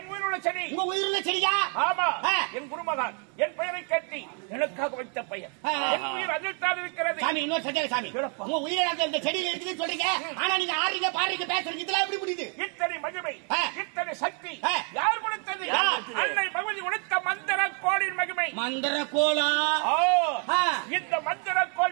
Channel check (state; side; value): quieter; left; 39.9 dB